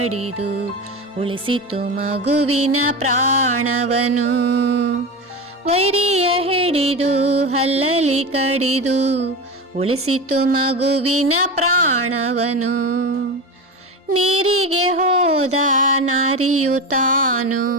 ಉಳಿಸಿತು ಮಗುವಿನ ಪ್ರಾಣವನು. ವೈರಿಯ ಹಿಡಿದು ಹಲ್ಲಲಿ ಕಡಿದು ಉಳಿಸಿತು ಮಗುವಿನ ಪ್ರಾಣವನು. ನೀರಿಗೆ ಹೋದ ನಾರಿಯು ತಾನು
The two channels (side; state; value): both; normal; correlation 0.23